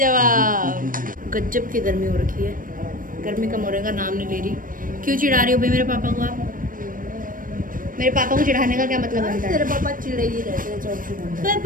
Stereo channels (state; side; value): late; left; 0.40 ms